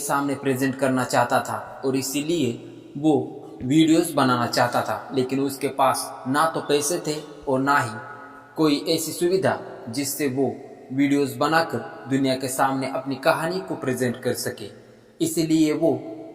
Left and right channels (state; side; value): identical; both; correlation 1.00